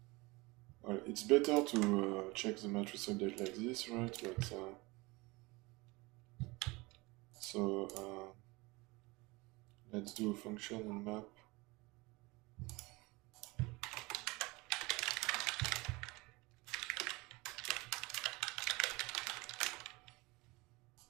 well, it's better to check the matrix update like this, right? But so let's do a function in map.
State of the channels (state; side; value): quieter; left; 23.8 dB